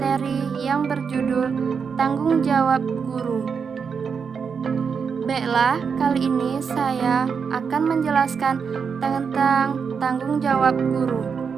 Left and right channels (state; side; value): quieter; left; 6.1 dB